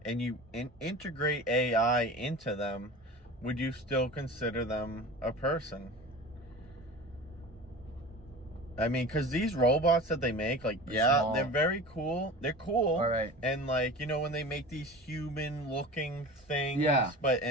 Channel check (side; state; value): both; normal; correlation 0.35